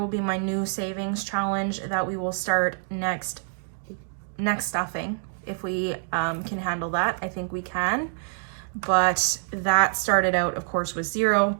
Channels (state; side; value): silent; left; 61 dB below the other